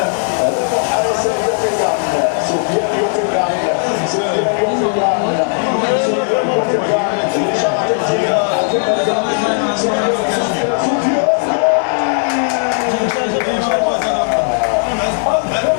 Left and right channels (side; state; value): right; silent; 63 dB below the other